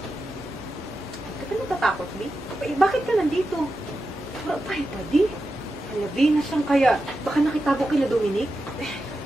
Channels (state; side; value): normal; both; correlation 0.90